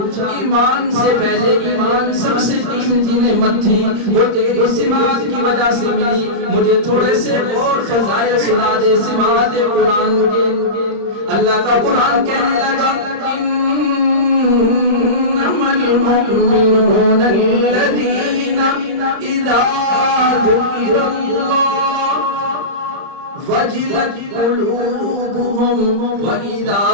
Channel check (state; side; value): late; left; 31 ms